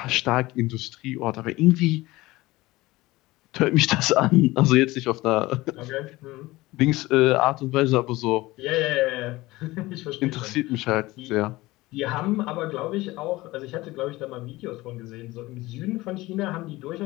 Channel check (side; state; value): right; quieter; 19.4 dB